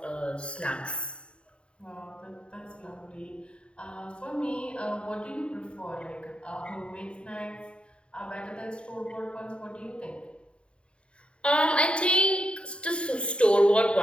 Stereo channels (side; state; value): right; late; 0.055 ms